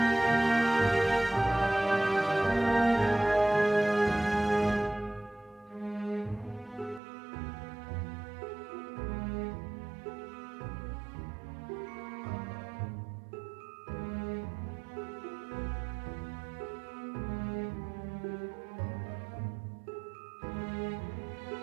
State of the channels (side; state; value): left; drops out; at 7.0 s